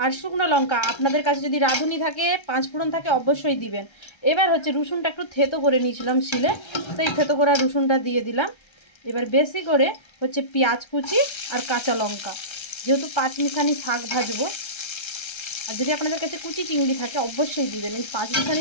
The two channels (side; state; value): right; late; 1.3 ms